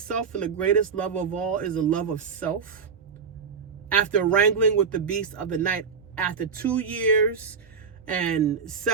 and the greatest love of all is the love of self. After wrangling with the beast of the night, after 2 years and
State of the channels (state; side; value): quieter; left; 5.9 dB